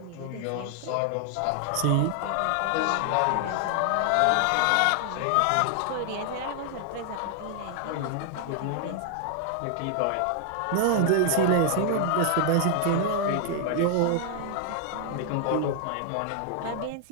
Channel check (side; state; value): both; different; correlation 0.00